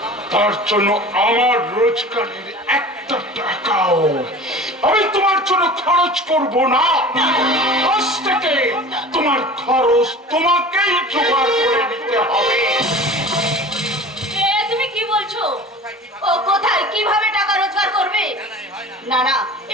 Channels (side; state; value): both; normal; correlation 0.39